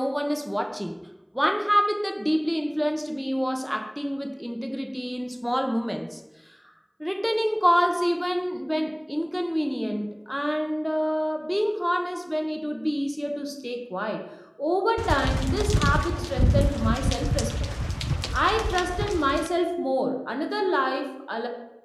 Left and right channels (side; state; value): both; identical; correlation 1.00